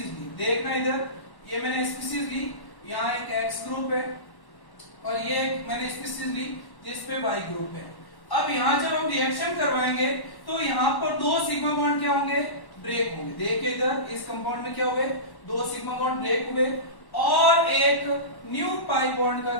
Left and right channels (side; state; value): right; late; 1.1 ms